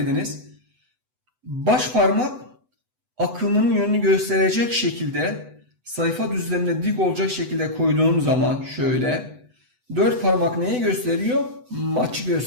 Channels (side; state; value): left; late; 8.0 ms